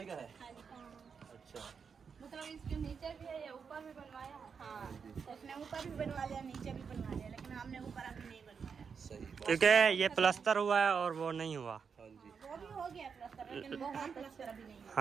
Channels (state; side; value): quieter; left; 6.1 dB